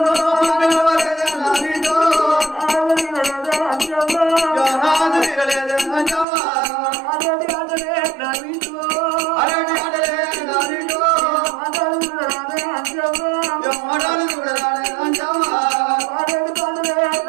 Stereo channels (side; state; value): left; drops out; at 6.2 s